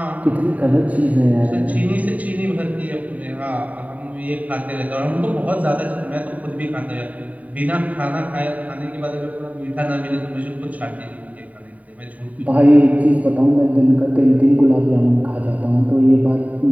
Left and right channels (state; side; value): late; left; 0.070 ms